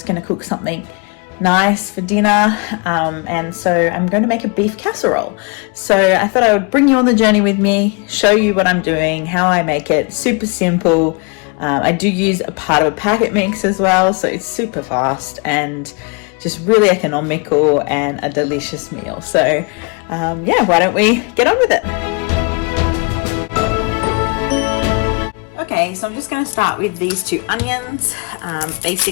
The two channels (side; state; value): right; quieter; 32.0 dB